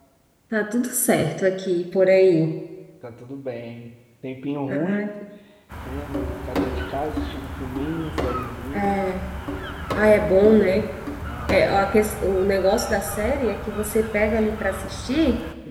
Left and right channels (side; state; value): both; identical; correlation 1.00